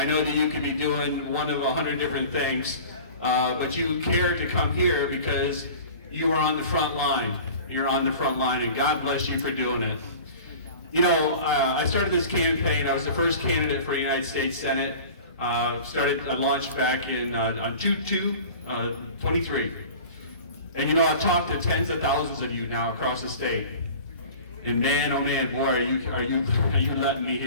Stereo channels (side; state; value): both; inverted; correlation -0.41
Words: know that you could be doing one of 100 different things, but you cared to come here because you are on the front line. You're on the front line, and God bless you for doing it. You know, I started this campaign. I was the first candidate for the United States Senate. I launched back in on 2/2/23. And you know, I've talked to tens of thousands of you now across the state. And man, oh man, boy, are you letting me